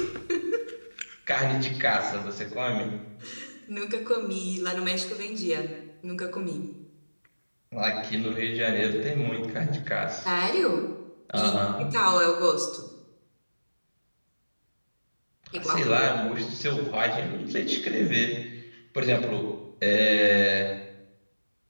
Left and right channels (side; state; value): both; inverted; correlation -1.00